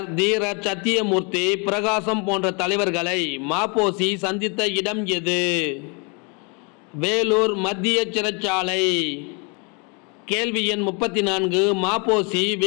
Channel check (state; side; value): quieter; right; 33.3 dB